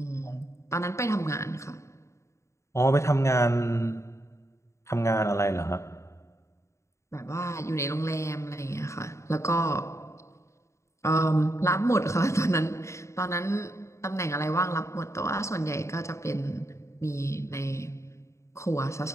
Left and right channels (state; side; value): late; right; 0.14 ms